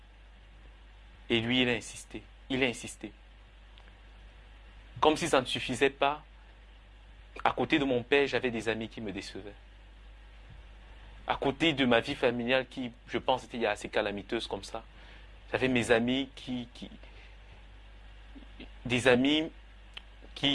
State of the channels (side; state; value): both; identical; correlation 1.00